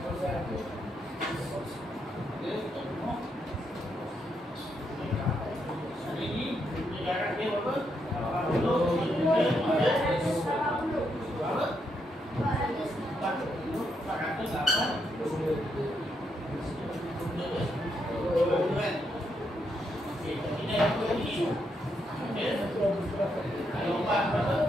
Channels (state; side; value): normal; both; correlation 0.79